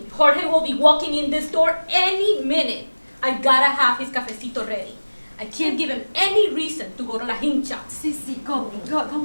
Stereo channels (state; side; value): inverted; both; correlation -1.00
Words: Jorge will be walking in this door any minute. I gotta have his cafecito ready. I can't give him any reason to go to La Hincha. Go,